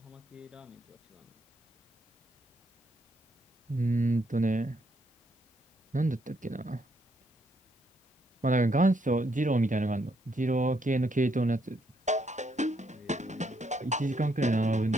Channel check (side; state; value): both; normal; correlation 0.74